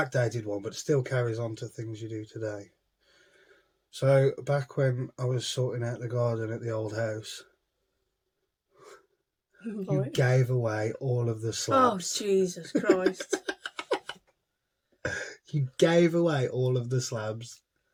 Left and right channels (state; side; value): identical; both; correlation 1.00